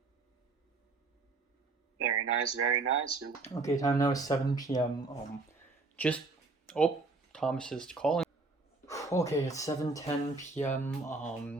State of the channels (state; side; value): quieter; left; 3.6 dB